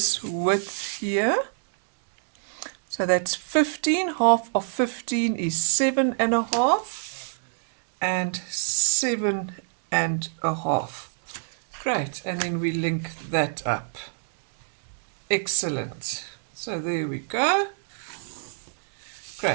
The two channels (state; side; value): silent; left; digital silence